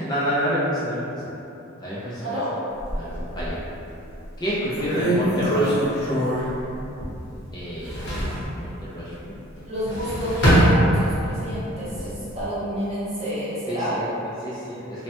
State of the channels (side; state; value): both; normal; correlation 0.50